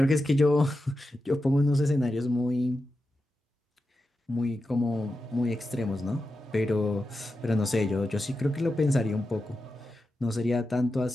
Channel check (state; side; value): normal; both; correlation 0.90